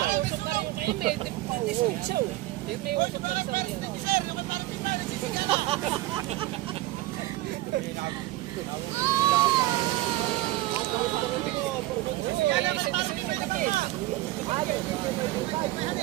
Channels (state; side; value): quieter; left; 17.2 dB